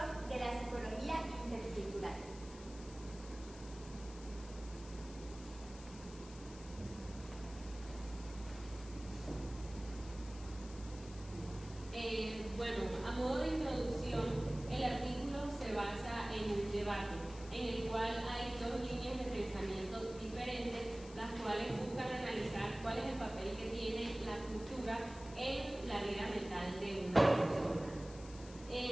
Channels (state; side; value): noise; left; hiss, 18 dB below the sound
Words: de la psicología intercultural. Bueno, a modo de introducción, el artículo se basa en un debate en el cual hay dos líneas de pensamiento diferentes, las cuales buscan analizar cuál es el papel que tiene la cultura en la vida mental de una persona.